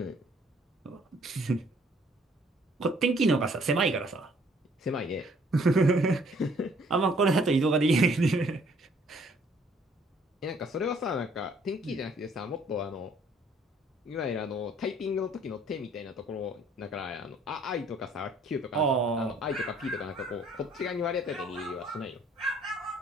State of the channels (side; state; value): both; normal; correlation 0.61